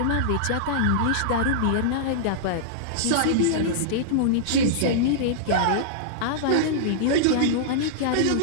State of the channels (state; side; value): different; both; correlation -0.02